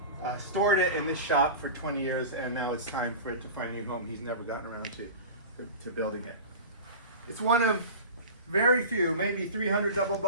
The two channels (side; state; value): both; inverted; correlation -0.32